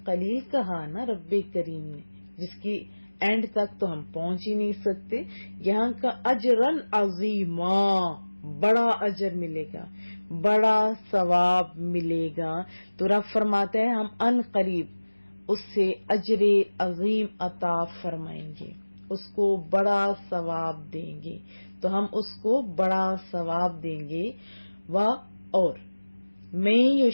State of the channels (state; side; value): inverted; both; correlation -1.00